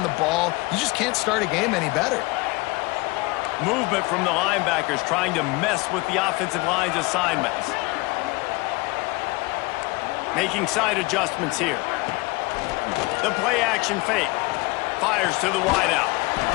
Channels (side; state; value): right; quieter; 24.0 dB